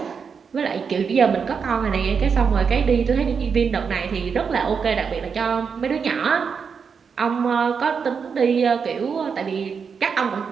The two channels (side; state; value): left; quieter; 6.1 dB